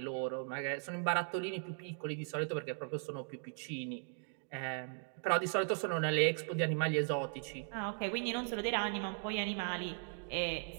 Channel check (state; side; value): silent; left; 52 dB below the other